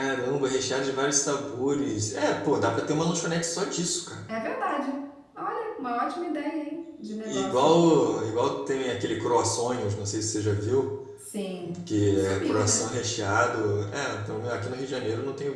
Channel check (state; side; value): identical; both; correlation 1.00